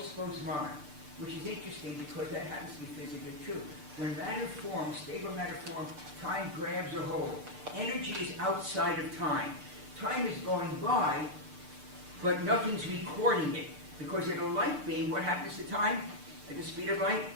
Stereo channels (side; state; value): left; late; 6.8 ms